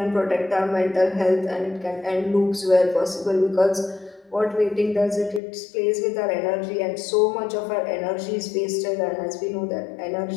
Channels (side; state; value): right; drops out; at 5.4 s